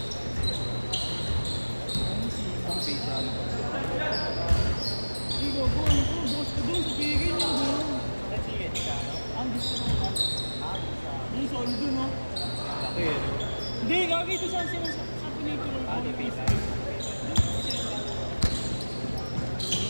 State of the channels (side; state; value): both; inverted; correlation -1.00